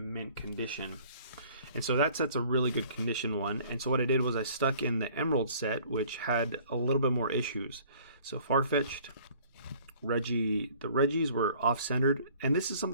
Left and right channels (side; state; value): both; inverted; correlation -0.53